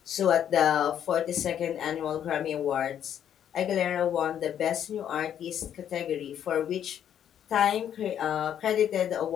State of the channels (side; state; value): right; quieter; 9.7 dB